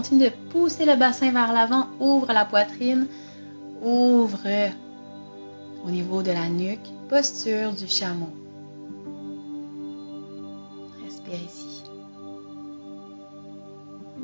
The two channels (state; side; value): inverted; both; correlation -1.00